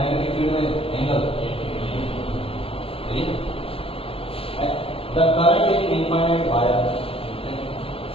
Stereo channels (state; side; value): late; right; 0.27 ms